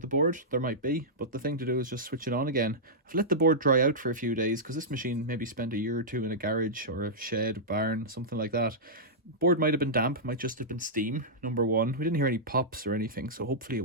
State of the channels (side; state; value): both; normal; correlation -0.12